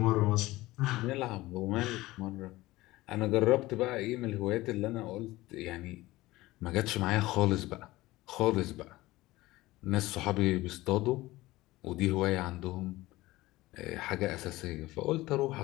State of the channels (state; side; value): quieter; right; 18.6 dB